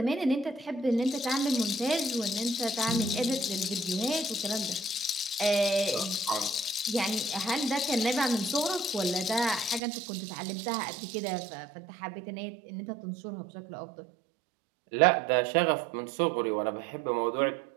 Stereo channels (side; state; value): left; drops out; at 9.8 s